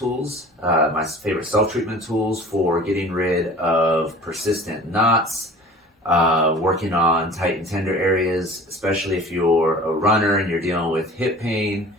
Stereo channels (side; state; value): both; normal; correlation 0.43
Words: my favorite self-treatment tools for getting rid of persistent knots, working on tight and tender areas, especially if you're a runner and you're dealing with hip pain